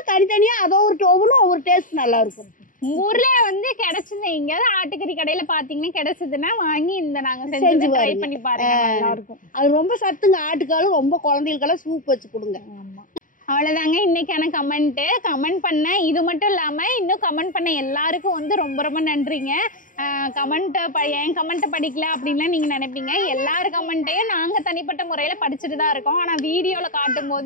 தனித்தனியா. அதை ஒவ்வொன்றும் ஒவ்வொரு டேஸ்ட் நல்லா இருக்கும். ஊர்ல வந்து கிடைச்சது எங்கயாவது ஆட்டுக்கறி கடையில பாத்தீங்கன்னா கிடைச்சதுன்னா வாங்கி இந்த நாங்க செஞ்சு ட்ரை பண்ணி பாருங்க, நல்லா இருக்கும். அது ரொம்ப சத்துங்க. ஆட்டுக்காலும் ரொம்ப குழந்தைகளுக்கெல்லாம் சூப் வச்சு கொடுங்க. ஆமா, அவ்வளவுதாங்க இன்னைக்கான கமெண்ட் பண்ண. இது மட்டும் இல்லாம இன்னும் கமெண்ட் பண்ண எல்லாருக்கும் வந்து ரொம்ப ரொம்ப நன்றிங்க. என் கமெண்ட்டை படிக்கல அப்படின்லாம் நீங்க நினைப்பீங்க. எல்லார் கமெண்ட்டையும் நாங்க தனிப்பட்ட முறையில படிச்சுட்டு தான் இருக்கோம். ஆனா வீடியோல காட்டும்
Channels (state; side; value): late; right; 0.39 ms